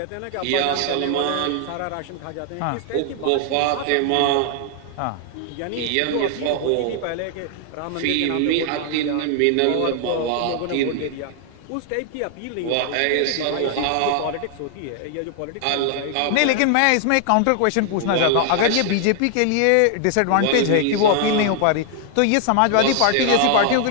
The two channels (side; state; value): both; different; correlation 0.00